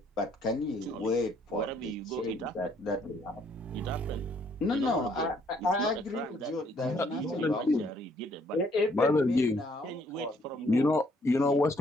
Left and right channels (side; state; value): both; normal; correlation 0.66